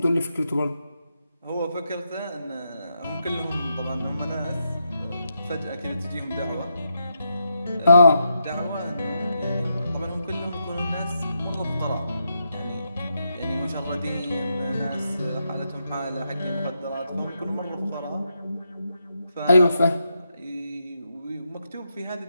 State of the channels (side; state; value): both; inverted; correlation -0.83